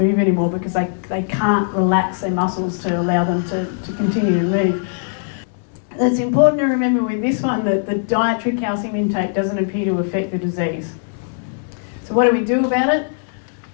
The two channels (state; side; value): silent; right; digital silence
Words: anymore because they can't relax their muscles to allow them to continue to move. It's important to remember with this one that the dietary calcium intake doesn't appear to affect the disease. So what do we do about it?